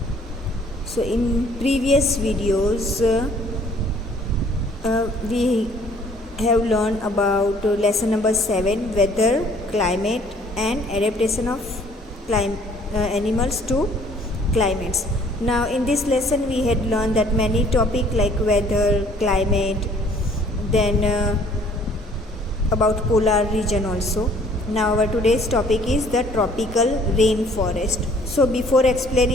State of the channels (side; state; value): both; normal; correlation 0.58